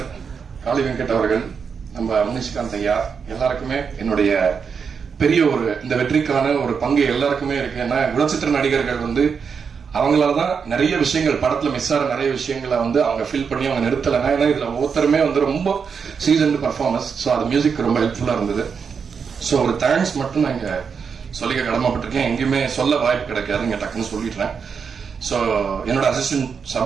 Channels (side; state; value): left; quieter; 6.1 dB